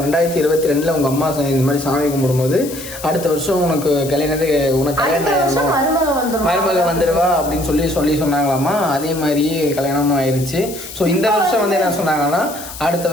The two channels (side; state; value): left; noise; hiss, 13 dB below the sound